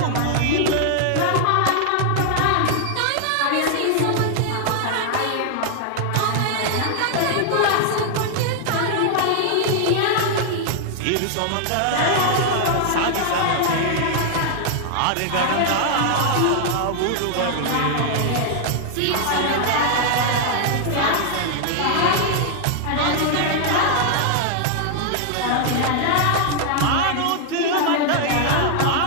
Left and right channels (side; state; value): both; different; correlation 0.00